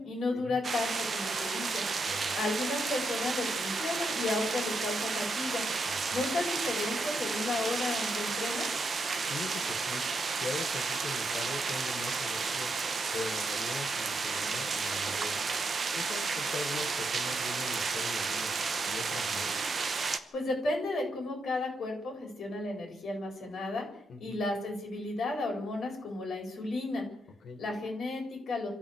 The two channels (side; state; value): both; normal; correlation 0.81